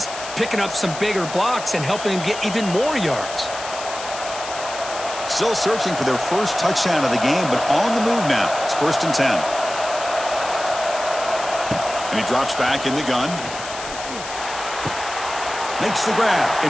picking up some bigger blocks and helping them get even more yards. Still searching for their first touchdown of the game, but on the move now. It's 1st and 10. And he drops back in the gun. Makes the grab.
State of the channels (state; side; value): noise; left; hiss, 10 dB below the sound